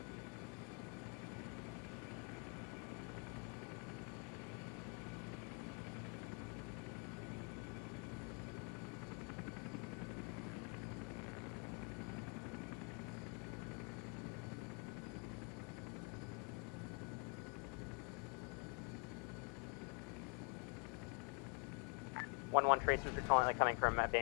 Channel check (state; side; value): quieter; right; 37.9 dB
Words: One tracers are currently coming from